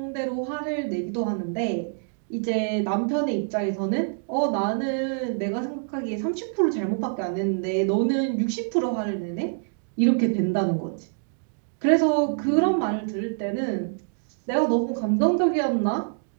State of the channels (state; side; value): silent; left; digital silence